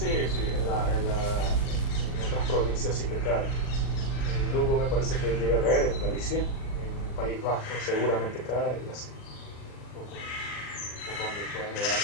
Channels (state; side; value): late; right; 39 ms